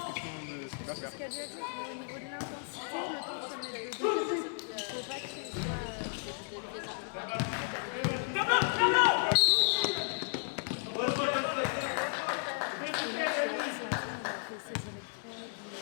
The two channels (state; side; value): silent; right; 55 dB below the other